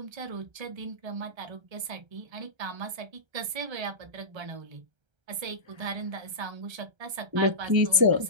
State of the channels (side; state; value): left; late; 1.3 ms